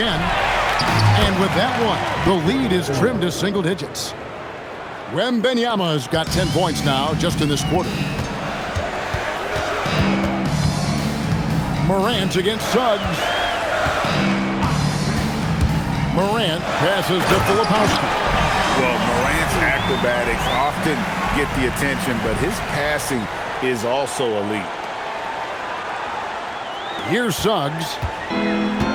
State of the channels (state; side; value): identical; both; correlation 1.00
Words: And with that one, the lead is trimmed to single digits. Wembanyama's got 10 points now just in this quarter. Morant against Suggs. Morant passes to Filipowski. Well, Morant's acrobatics often get the attention, but his passing is also elite. Here's Suggs.